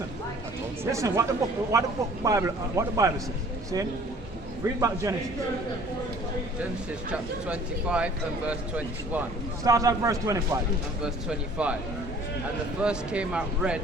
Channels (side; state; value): both; normal; correlation 0.52